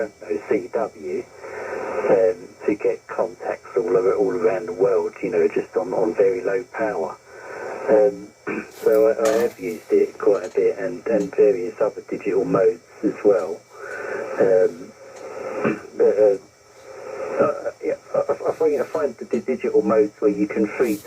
know CW, to get contacts all around the world, just on very low power. So I have used it quite a bit, and various other digital modes as well. I find the digital modes where you can free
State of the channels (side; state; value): both; identical; correlation 1.00